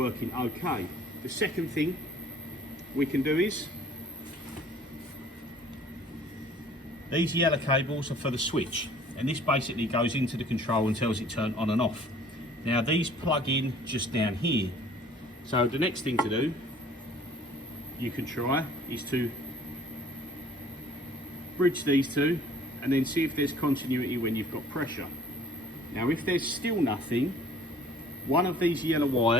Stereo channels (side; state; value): both; normal; correlation 0.53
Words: okay. The second thing we can do is, these yellow cables are for the switch, and this basically goes into the control and tells it turn on and off. Now these plug in just down here, so the next thing to do you can try is to bridge these two and then see if there's continuity when you've got pressure. Now if there's still nothing, one of these yellow